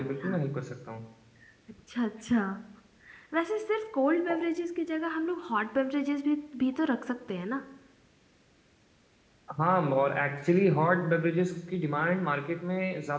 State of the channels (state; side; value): identical; both; correlation 1.00